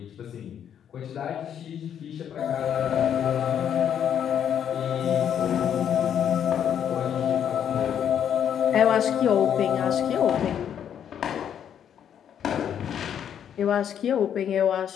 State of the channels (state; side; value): quieter; right; 9.1 dB